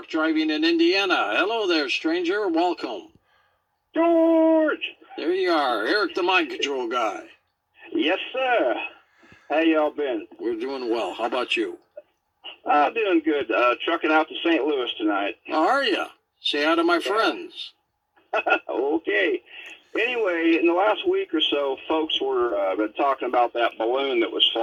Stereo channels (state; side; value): identical; both; correlation 1.00